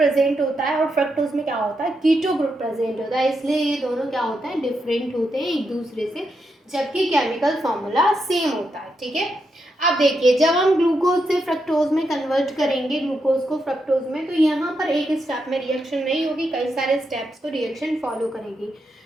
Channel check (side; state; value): both; normal; correlation 0.83